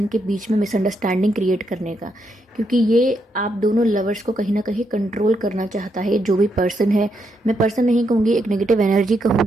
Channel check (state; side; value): normal; both; correlation 0.79